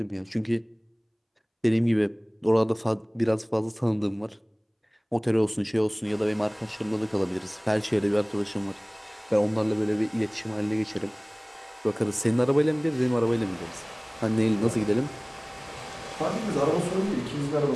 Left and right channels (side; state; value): both; identical; correlation 1.00